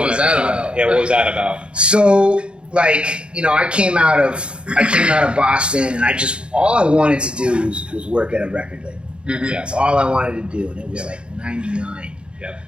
was that about? Yeah, what was that about? So I came out of Boston, and all I wanted to do was work at a record label. Mm-hmm. That's all I wanted to do, and it was 99. Yep.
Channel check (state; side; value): late; left; 0.055 ms